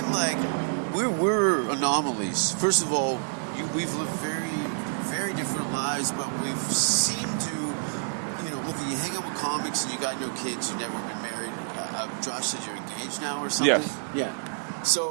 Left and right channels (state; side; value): silent; left; digital silence